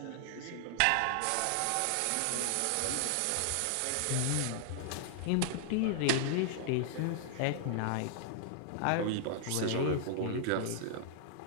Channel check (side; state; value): both; different; correlation -0.01